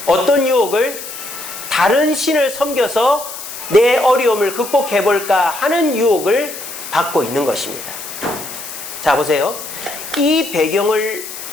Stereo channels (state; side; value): noise; left; hiss, 10 dB below the sound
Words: 어떤 유혹을? 다른 신을 섬겨서 내 어려움을 극복해볼까 하는 유혹을 받고 있는 것입니다. 자, 보세요. 이 배경을